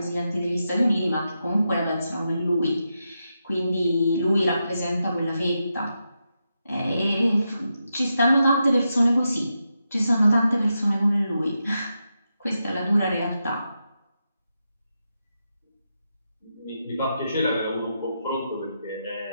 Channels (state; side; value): inverted; both; correlation -0.86